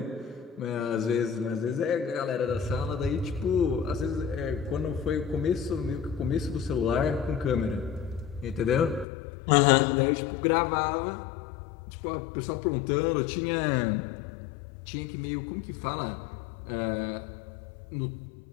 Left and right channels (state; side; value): drops out; right; at 9.1 s